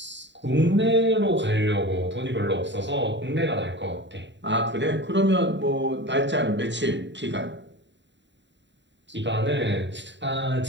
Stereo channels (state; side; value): late; left; 0.52 ms